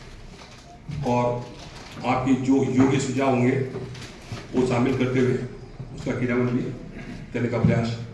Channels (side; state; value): both; identical; correlation 1.00